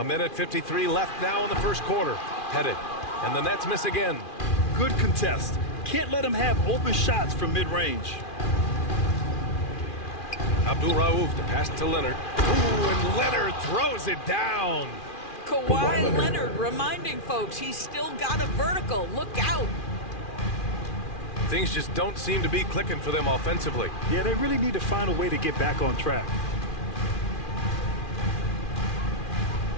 minute 53 left now in the first quarter. Headed. And the Nets miss again. Good contest. Can't let them have open shots from mid-range. Abdul-Rauf, the pass to Leonard. Ooh, and Leonard throws it down. Kawhi Leonard reminding folks he's still got a vertical. Look out. Things just don't seem to be clicking for them offensively. Yeah, they really need to find a way to get back on track.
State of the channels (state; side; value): late; right; 2.4 ms